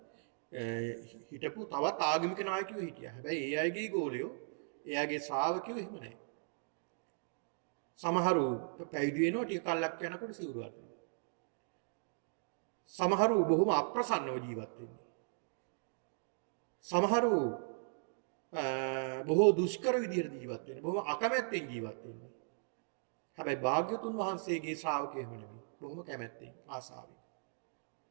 හිටපු තවත් ආගමික නායකයෝ හිටියා. හැබැයි ඒ අයගේ ගෝලියෝ, ඒ අයගේ ශ්‍රාවකයෝ එහෙම නැහැ. සමහරු පැවිදි වෙනවා ටික කල්ක් යනකොට සිවුරු අරිනවා. සමහරු බොහොම අප්‍රසන්නව ජීවත් වෙන්නේ. සමහරු බොහෝ දුෂ්කර විදිහට ජීවත් වෙන්නේ. බොහොම අකමැත්තෙන් ජීවත් වෙන්නේ. හැබැයි භාග්‍යතුන් වහන්සේගේ ශ්‍රාවකයෝ එහෙම නෙමෙයි. බොහොම කැමැත්තෙන් ආසාවෙන්.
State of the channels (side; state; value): left; silent; digital silence